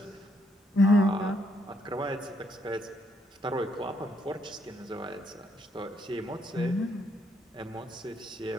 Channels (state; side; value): normal; both; correlation 0.73